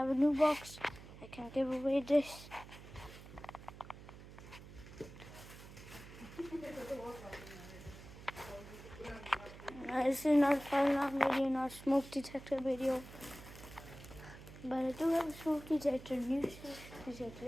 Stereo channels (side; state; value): right; noise; hum, 16 dB below the sound